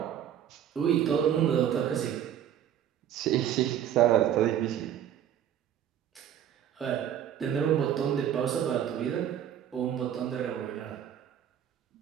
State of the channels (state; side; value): quieter; left; 10.1 dB